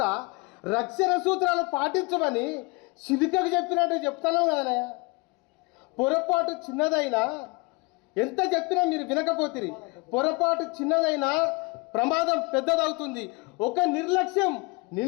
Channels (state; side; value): quieter; right; 26.9 dB